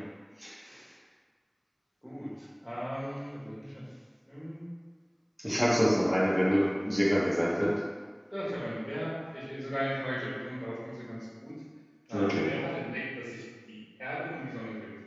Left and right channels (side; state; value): both; identical; correlation 1.00